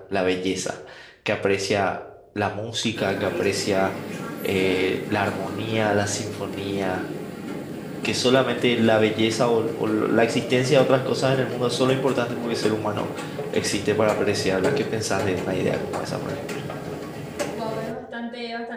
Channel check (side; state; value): both; identical; correlation 1.00